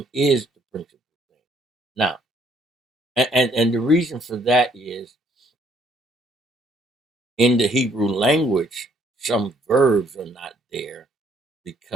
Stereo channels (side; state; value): both; normal; correlation 0.66